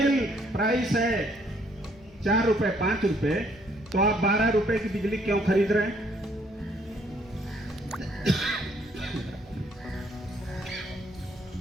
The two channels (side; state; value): both; normal; correlation 0.66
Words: प्राइस है 4 रुपए 5 रुपए, तो आप 12 रुपए की बिजली क्यों खरीद रहे हैं?